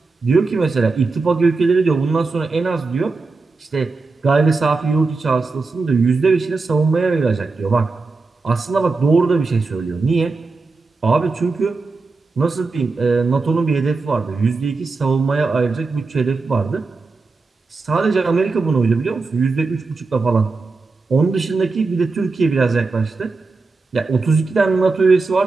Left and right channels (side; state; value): left; quieter; 4.0 dB